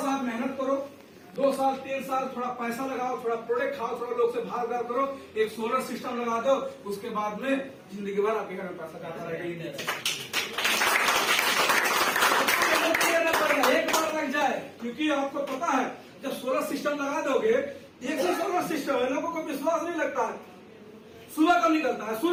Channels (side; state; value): both; identical; correlation 1.00